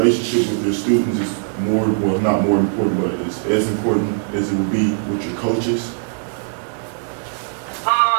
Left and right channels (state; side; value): silent; left; digital silence